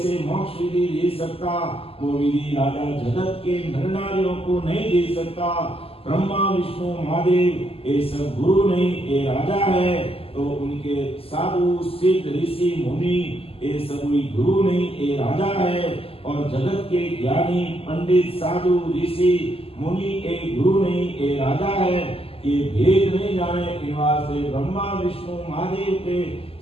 मोक्ष विधि दे सकता वो विधि राजा जगत के नर नारियों को नहीं दे सकता। ब्रह्मा विष्णु महादेव ये सब गुरु नहीं ये राजा है तो उनके साधु सिद्ध ऋषि मुनि ये सब गुरु नहीं ये राजा है। और जगत के ज्ञानी पंडित साधु ऋषि मुनि ये गुरु नहीं ये राजा है। ये भेद नहीं जाने के वास्ते ब्रह्मा विष्णु महादेव के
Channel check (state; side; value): late; right; 0.28 ms